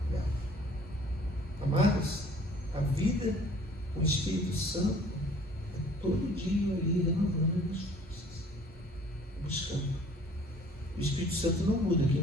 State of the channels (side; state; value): both; normal; correlation 0.53